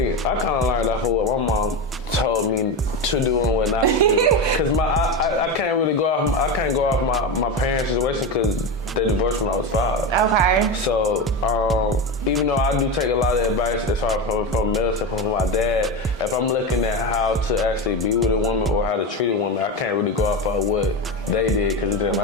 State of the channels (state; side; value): normal; both; correlation 0.18